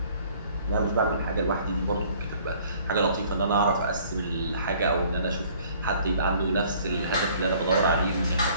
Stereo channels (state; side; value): inverted; both; correlation -0.56